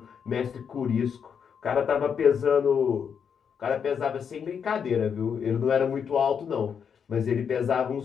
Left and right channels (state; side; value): quieter; right; 7.1 dB